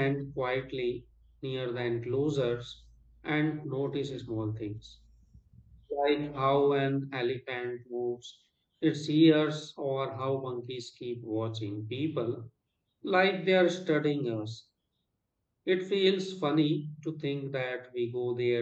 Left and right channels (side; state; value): both; identical; correlation 1.00